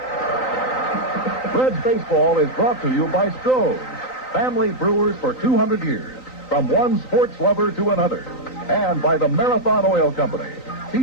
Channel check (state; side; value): late; right; 3.9 ms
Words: Reds Baseball is brought to you by Stroh's, family brewers for 200 years, from one sports lover to another, and by the Marathon Oil Company,